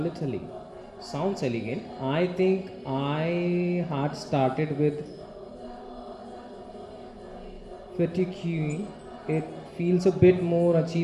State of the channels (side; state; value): both; identical; correlation 1.00